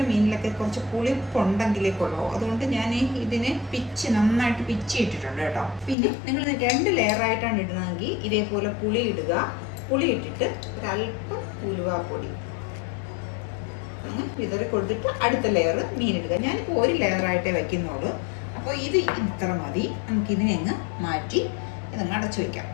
മീനിലൊക്കെ കുറച്ച് പുളിപ്പുണ്ടെങ്കിലേ കൊള്ളൂ. അതുകൊണ്ട് ഞാൻ ഇതിനെ നന്നായിട്ട് പിച്ചി ഇട്ടിട്ടുണ്ട് കേട്ടോ. പിന്നെ നിങ്ങൾ 2 ലെയറായിട്ടാണ് ഇടുന്നതെങ്കിൽ ഇതേപോലെ പുളി ഇടുക. പുളി ഇട്ടിട്ട് ഒരല്പം ഉലുവാപ്പൊടി വിതറി കൊടുത്തിട്ട് അടുത്ത ലെയർ മീനിടുക. ഞാനിപ്പോൾ 1 ലെയറായിട്ടേ വയ്ക്കുന്നുള്ളൂ. അപ്പോൾ ഇത് ഇത്ര മതി. നമുക്കിതിനെ അങ്ങ് മാറ്റി ഇതങ്ങ് അടച്ചു വയ്ക്കാം.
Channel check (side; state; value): right; drops out; at 6.0 s